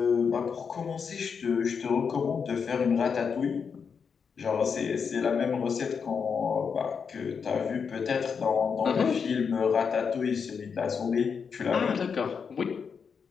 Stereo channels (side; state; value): right; quieter; 6.2 dB